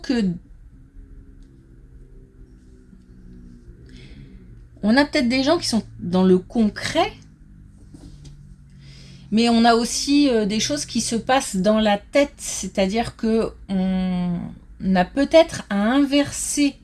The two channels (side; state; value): both; identical; correlation 1.00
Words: On a peut-être des gens qui sont dans le concret, mais on a aussi des choses qui se passent dans la tête, c'est-à-dire que on a peut-être à inverser